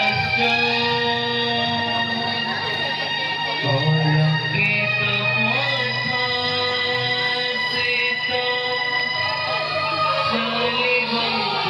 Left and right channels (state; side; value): identical; both; correlation 1.00